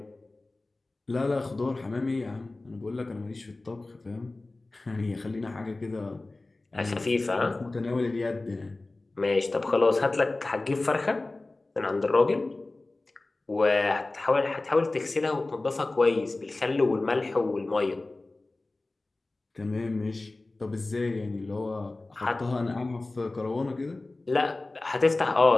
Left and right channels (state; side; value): quieter; right; 3.1 dB